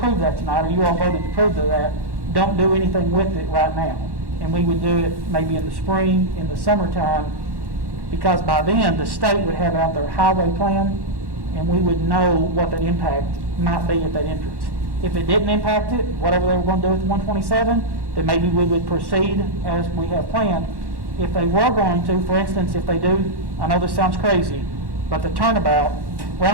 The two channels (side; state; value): left; late; 1.1 ms